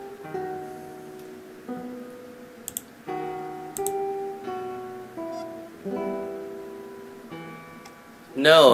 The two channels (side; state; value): both; identical; correlation 1.00